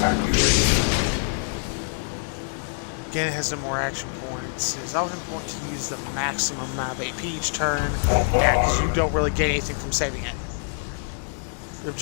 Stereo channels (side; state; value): right; silent; 62 dB below the other